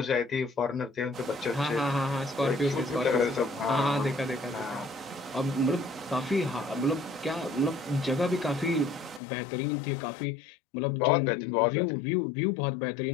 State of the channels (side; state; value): right; drops out; at 9.2 s